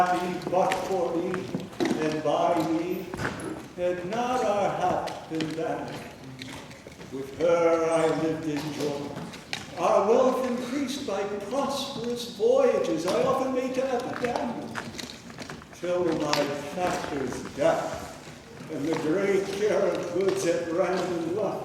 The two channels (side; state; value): both; identical; correlation 1.00